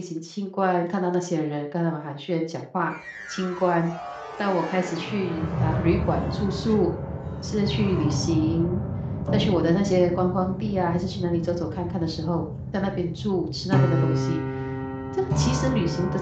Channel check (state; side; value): identical; both; correlation 1.00